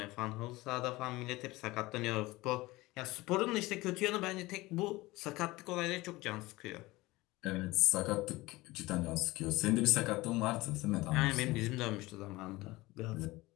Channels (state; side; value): quieter; right; 20.2 dB